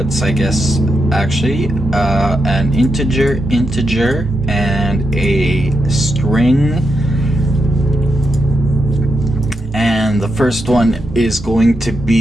I guess, actually, an integer, and a string. And the first one is going to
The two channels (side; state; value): both; normal; correlation 0.85